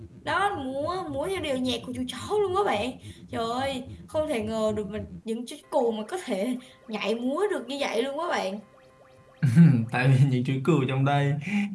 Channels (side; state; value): both; identical; correlation 1.00